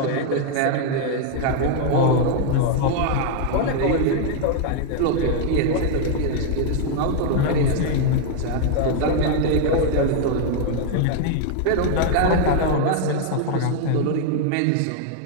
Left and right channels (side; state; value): both; different; correlation 0.00